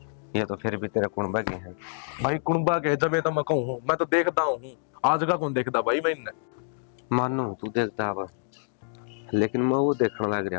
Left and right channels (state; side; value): silent; right; digital silence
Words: ये तो फिर भी तेरे कुणबा के हैं भाई कुणबा के जब तो मैं कहूँ मैं तो देखता हूँ आज का कौन देखता भाई मैं इन्हें मानो तू देखता अब लेकिन मैं वो देखने लग